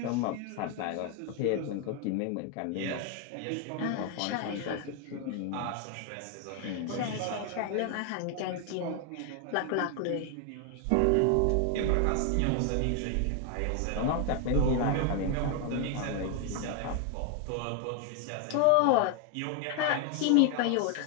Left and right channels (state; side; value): different; both; correlation 0.00